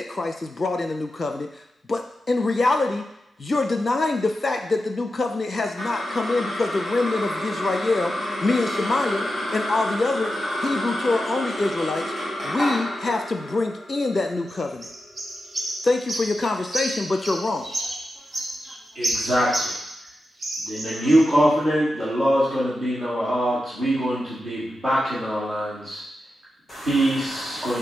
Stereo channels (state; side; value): normal; both; correlation 0.90